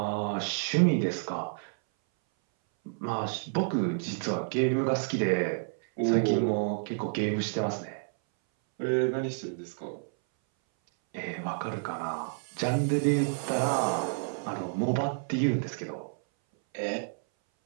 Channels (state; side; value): silent; left; 58 dB below the other